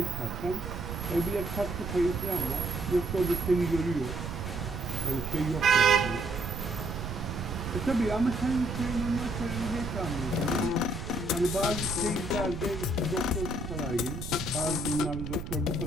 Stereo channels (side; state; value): right; noise; rumble, 8 dB below the sound